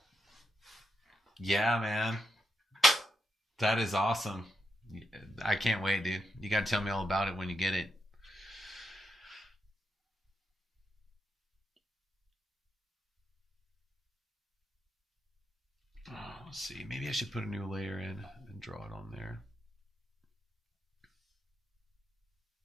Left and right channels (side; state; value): both; normal; correlation 0.84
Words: Yeah, man. That is awesome. I can't wait, dude. You got to tell me all about it when you get it. Oh, let's see. Maybe I should put a new layer in and draw it on there.